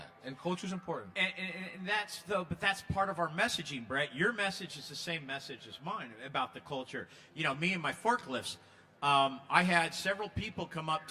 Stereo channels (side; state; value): both; identical; correlation 1.00